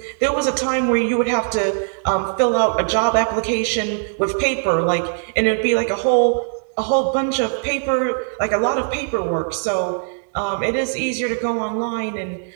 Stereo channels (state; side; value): silent; left; 65 dB below the other